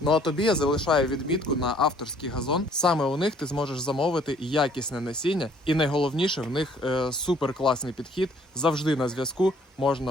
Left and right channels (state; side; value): normal; both; correlation 0.60